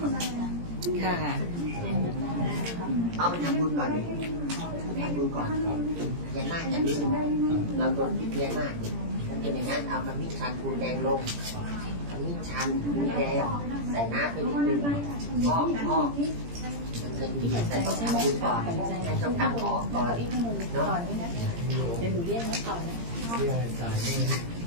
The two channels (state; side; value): late; left; 17 ms